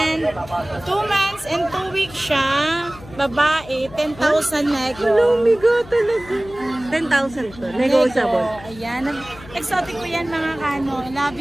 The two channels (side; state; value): left; noise; hum, 18 dB below the sound